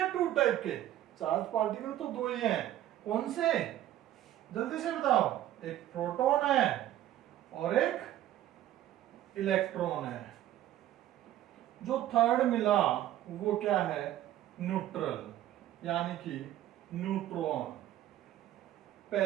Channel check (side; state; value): left; quieter; 13.0 dB